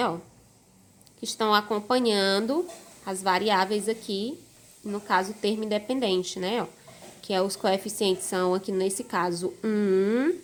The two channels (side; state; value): both; identical; correlation 1.00